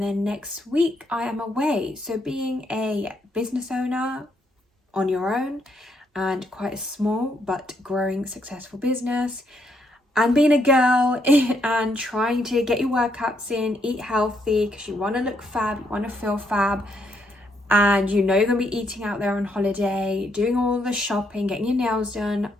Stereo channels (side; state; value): both; normal; correlation 0.75